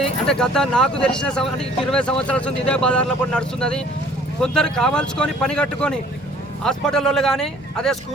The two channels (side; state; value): both; normal; correlation 0.54